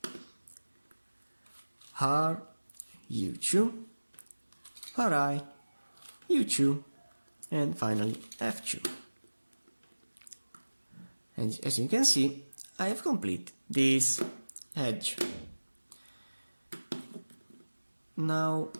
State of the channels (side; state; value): both; inverted; correlation -1.00